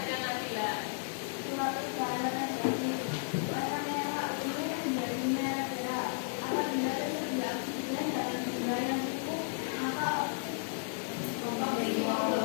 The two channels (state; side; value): silent; right; digital silence